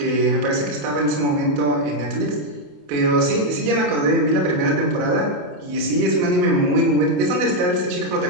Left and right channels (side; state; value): left; late; 28 ms